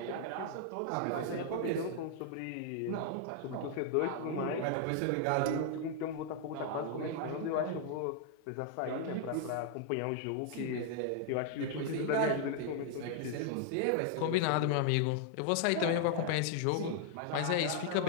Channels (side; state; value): both; different; correlation 0.00